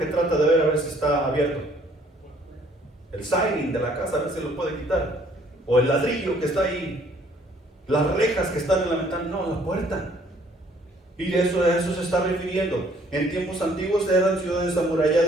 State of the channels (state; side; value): normal; both; correlation 0.61